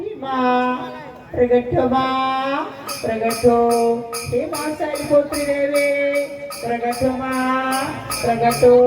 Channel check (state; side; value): identical; both; correlation 1.00